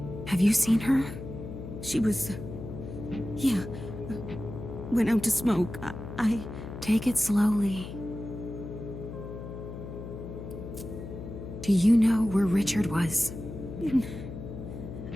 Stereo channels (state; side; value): noise; left; hum, 10 dB below the sound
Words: have you seen her? She was... yeah. Went out to smoke. I... Take it slowly. Do you know where Richard was? In